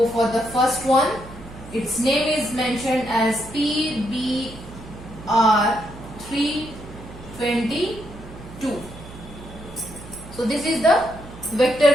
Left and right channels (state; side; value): noise; right; hum, 16 dB below the sound